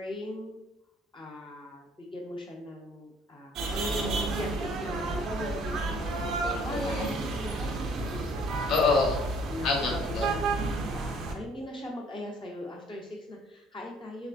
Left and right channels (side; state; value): both; normal; correlation 0.58